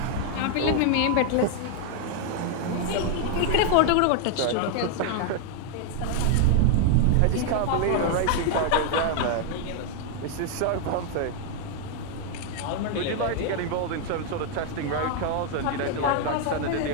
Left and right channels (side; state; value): both; different; correlation 0.00